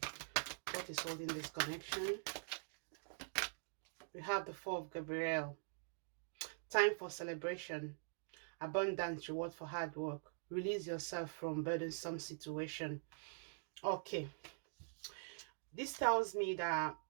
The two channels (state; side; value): silent; left; digital silence